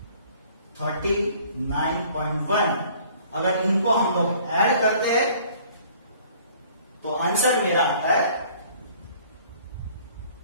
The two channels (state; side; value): inverted; both; correlation -0.55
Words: 39.1। अगर इनको हम लोग ऐड करते हैं तो आंसर मेरा आता है